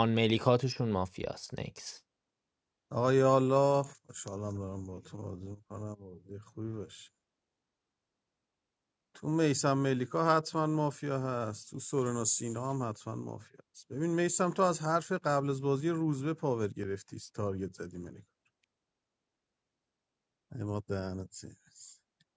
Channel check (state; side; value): identical; both; correlation 1.00